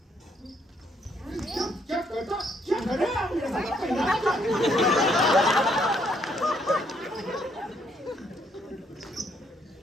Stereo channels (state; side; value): normal; both; correlation 0.70